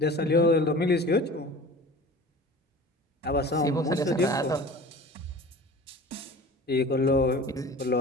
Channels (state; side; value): normal; both; correlation 0.40